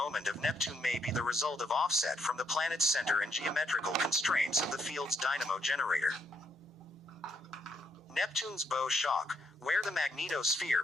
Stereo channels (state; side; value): normal; both; correlation 0.74